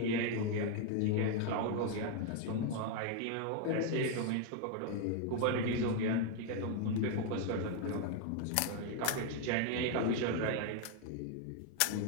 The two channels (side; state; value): both; different; correlation 0.01